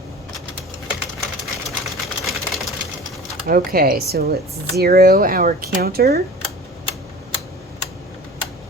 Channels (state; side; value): normal; both; correlation 0.40